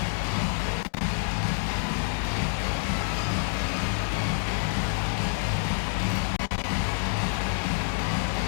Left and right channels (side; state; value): right; silent; 60 dB below the other